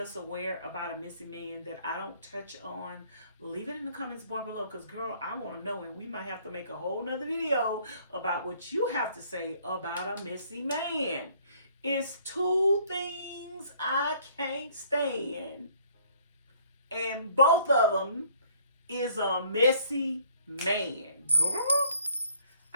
aware about a messy man that I don't touch on, leave it in the comments bar below, because girl, I want to know, and we might have to make a whole nother video about what you have to say about a messy man. It's 2 things I can't stand, and both of them is a messy man. Girl,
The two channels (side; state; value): both; inverted; correlation -0.61